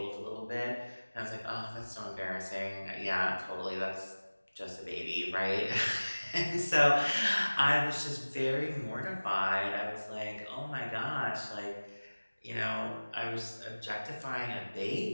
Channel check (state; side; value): inverted; both; correlation -1.00